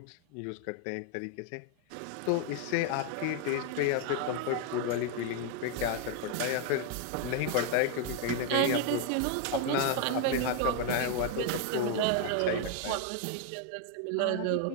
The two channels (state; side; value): different; both; correlation 0.01